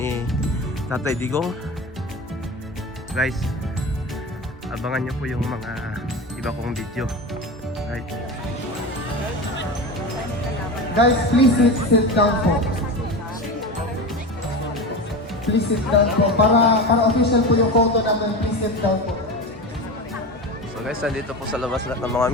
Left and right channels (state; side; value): normal; both; correlation 0.26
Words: Tatay Digong. Guys, abangan nyo po yung mga iba kong video. Right. Guys, please sit down po. Please sit down po. Para official po yung photo natin, please sit down po. So guys, nandito po sa labas lahat ng mga